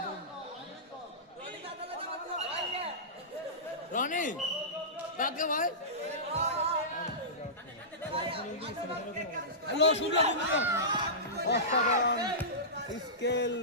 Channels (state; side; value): normal; both; correlation -0.20